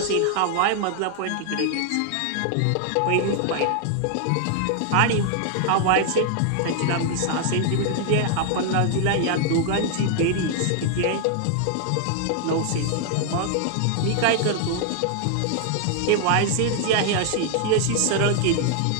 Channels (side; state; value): both; different; correlation 0.00